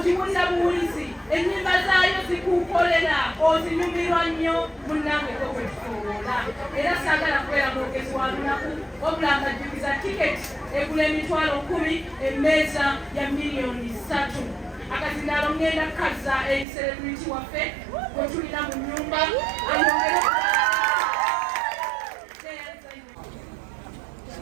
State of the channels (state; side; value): drops out; left; at 16.7 s